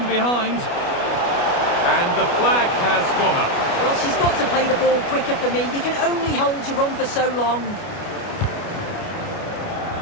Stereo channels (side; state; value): right; late; 29 ms